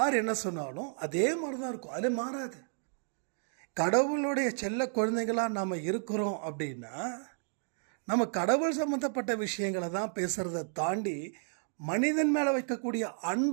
என்ன சொன்னாலும் அதே மாதிரி தான் இருக்கும், அது மாறாது. கடவுளுடைய செல்ல குழந்தைகளாக நாம் இருக்கிறோம் அப்படின்னா நம்ம கடவுள் சம்மந்தப்பட்ட விஷயங்களை தான் பேசுகிறத தாண்டி மனிதன் மேலே வைக்கக்கூடிய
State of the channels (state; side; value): silent; left; 56 dB below the other